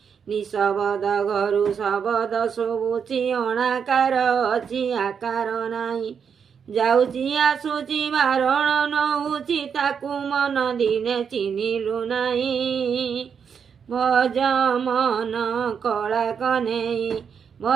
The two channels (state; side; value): quieter; left; 6.9 dB